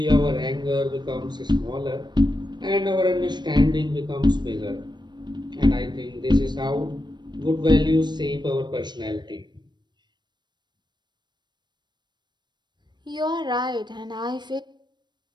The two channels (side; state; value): left; late; 0.21 ms